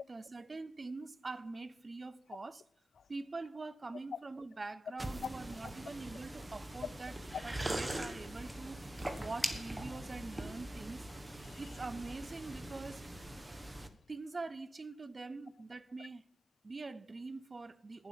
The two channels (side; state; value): both; normal; correlation 0.94